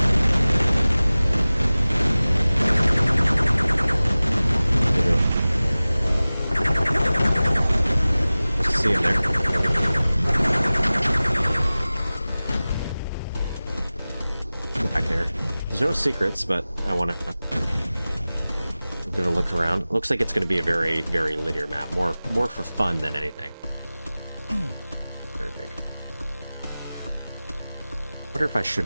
Let's see in there. Back there. There's no secrets, but I want to give a look around. It looks like it's going to be a very, very linear map. More for fun than anything. Very big. Wonder if I should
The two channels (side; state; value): both; inverted; correlation -0.98